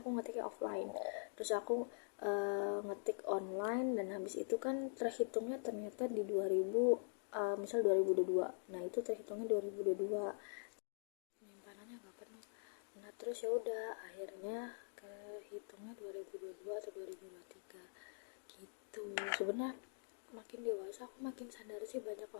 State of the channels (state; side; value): silent; right; digital silence